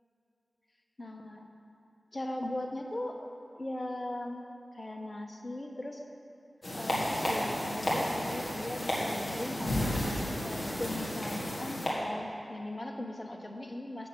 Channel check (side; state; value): both; normal; correlation 0.95